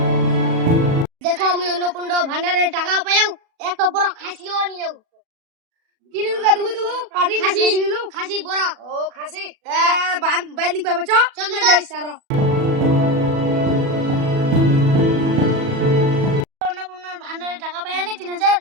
দেখো আমি অন্নকুণ্ড ভান্ডারের টাকা পাইও এত বড় খাসিও নিও কিনে দুগা দুগু খাসি নিলু খাসি বড় ও খাসি বাইর নিক পাবে চল যাই সারো অন্নপূর্ণার ভান্ডারে টাকা পাই নি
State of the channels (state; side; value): late; left; 37 ms